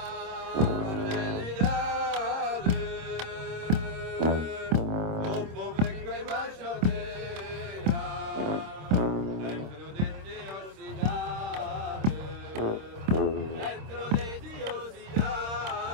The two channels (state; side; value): late; left; 26 ms